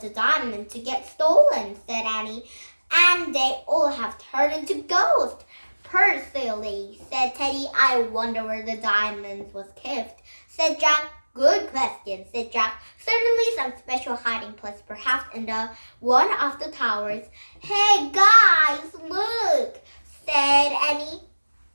the diamond to get stolen, said Annie, and they all have turned into ghosts. Poor silly, said Teddy. I wonder where the diamond was kept, said Jack. Good question, said Jack. Certainly some special hiding place, perhaps in the one of the towers. Hey guys, look, said Annie.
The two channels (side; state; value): both; inverted; correlation -1.00